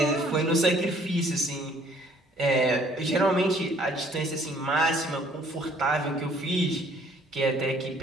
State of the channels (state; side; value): normal; both; correlation 0.60